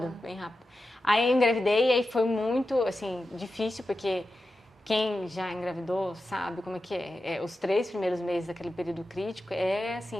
bem rápido. Aí eu engravidei e aí foi muito, assim, difícil, porque quem já engravidou sabe como é que é. Os 3 primeiros meses daquele período crítico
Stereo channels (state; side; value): normal; both; correlation 0.92